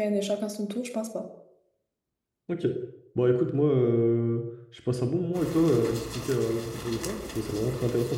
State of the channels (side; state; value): both; identical; correlation 1.00